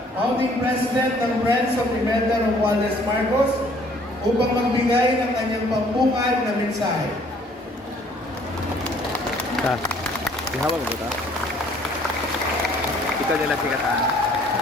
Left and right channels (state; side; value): normal; both; correlation 0.59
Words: Founding President ng Friends of Pimenta Romualdez Marcos, upang magbigay ng kanyang pambungad na mensahe. Ihawag mo ba? Ikaw nila sikatan.